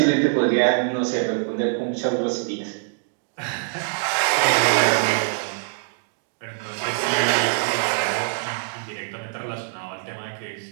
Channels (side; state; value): left; silent; digital silence